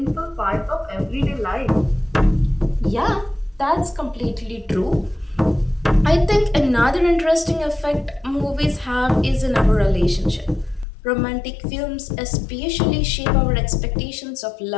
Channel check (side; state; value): right; drops out; at 10.9 s